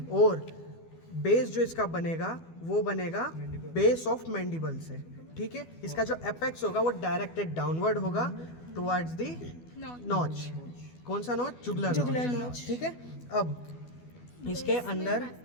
और बेस जो इसका बनेगा वो बनेगा बेस ऑफ मैंडिबल से। ठीक है, इसका जो एपेक्स होगा वो डायरेक्टेड डाउनवर्ड होगा टुवर्ड्स दी नॉच। कौन सा नॉच? Jugular notch. ठीक है, अब इसके अंदर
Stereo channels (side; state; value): right; late; 12 ms